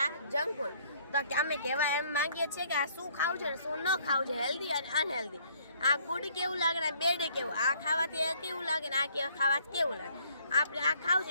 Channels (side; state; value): both; inverted; correlation -0.62